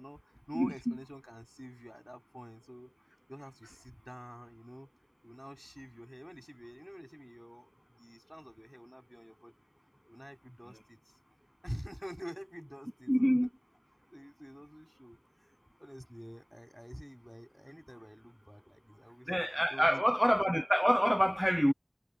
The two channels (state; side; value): identical; both; correlation 1.00